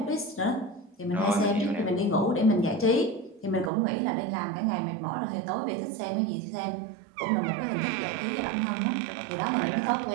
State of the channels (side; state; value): left; drops out; at 3.7 s